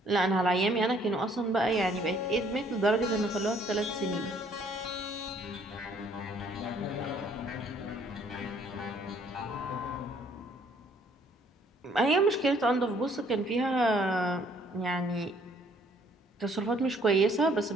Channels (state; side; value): normal; both; correlation 0.62